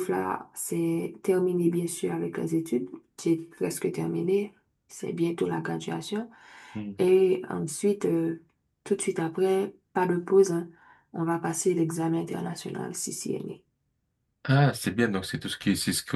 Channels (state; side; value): identical; both; correlation 1.00